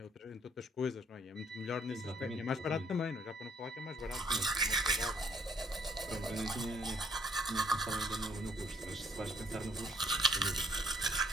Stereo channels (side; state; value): both; normal; correlation 0.64